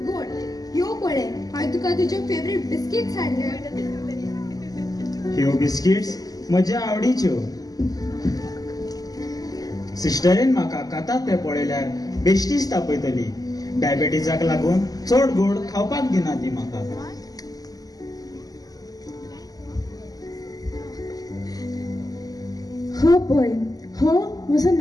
गोड ह्यो पळय, हांवें तुका तुजे फेवरेट बिस्किट्स हाडले. ह्यो बिस्किट्स म्हज्या आवडीच्यो. सिस्टरीन म्हाका कातात ते पळयल्यार बेश्टीच तापयतली. डायबेटिजाक लागून चड गोड खावपाक दिना ती म्हाका. हो पळय, हो म्हजो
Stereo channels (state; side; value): late; right; 0.18 ms